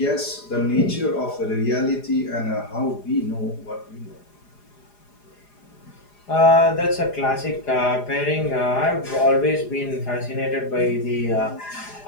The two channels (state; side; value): late; right; 4.9 ms